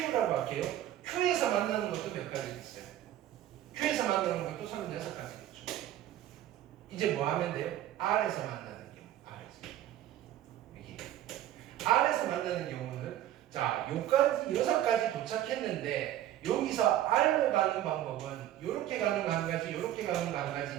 할게요. Q에서 만나는 것도 몇 가지 있어요. Q에서 만나는 것도 36가지겠죠. 이제 뭐 하면 돼요? R에서 만나는 경우. R에서 만나는 경우는 자, 여기까지 6가지 도착했는데 여기서 R로 가는 방법은 이렇게 가는 거 한 가지, 이렇게 가는 거 한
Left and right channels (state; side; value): quieter; left; 12.6 dB